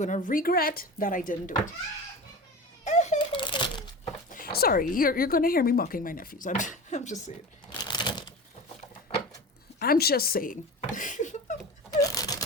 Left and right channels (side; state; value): both; normal; correlation 0.31